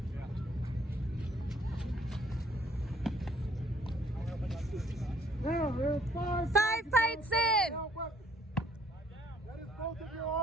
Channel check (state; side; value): normal; both; correlation 0.63